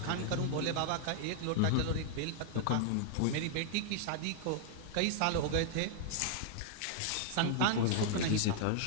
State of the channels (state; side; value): different; both; correlation -0.01